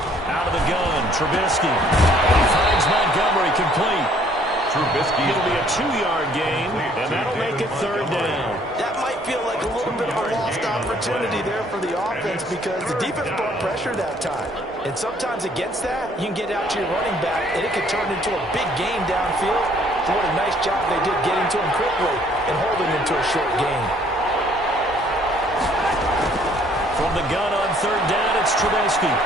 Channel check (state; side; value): normal; both; correlation 0.61